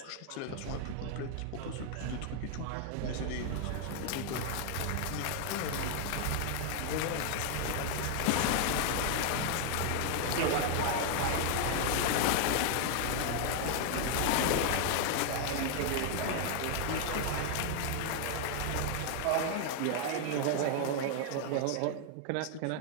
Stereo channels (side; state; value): both; different; correlation 0.00